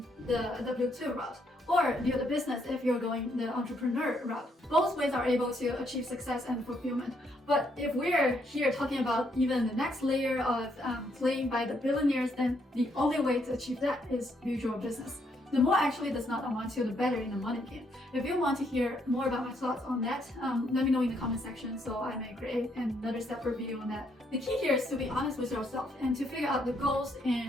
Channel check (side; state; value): both; normal; correlation 0.73